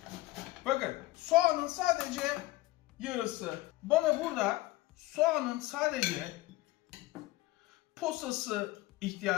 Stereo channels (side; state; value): right; quieter; 18.7 dB